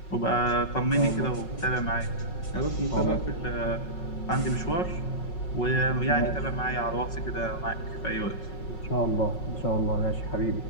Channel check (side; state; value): right; late; 5.4 ms